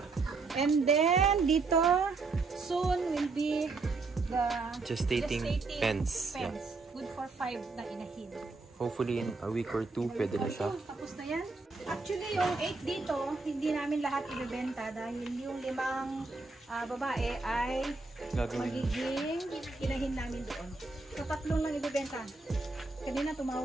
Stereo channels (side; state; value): left; quieter; 3.8 dB